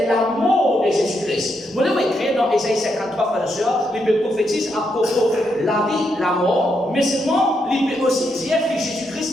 la mort de Jésus-Christ. Vous devez écrire dans Ésaïe 53, frères et sœurs, il prophétise à propos de la vie, la mort, mais seulement il peut aussi dire que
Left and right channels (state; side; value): normal; both; correlation 0.80